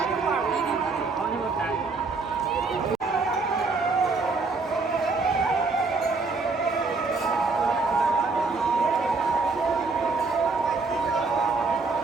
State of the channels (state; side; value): quieter; left; 4.0 dB